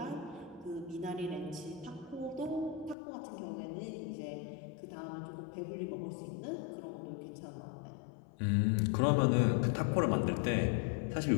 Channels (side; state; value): right; drops out; at 3.0 s